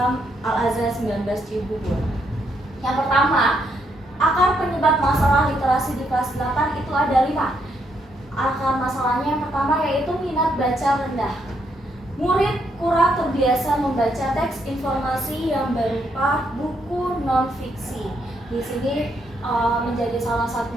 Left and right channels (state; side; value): normal; both; correlation 0.76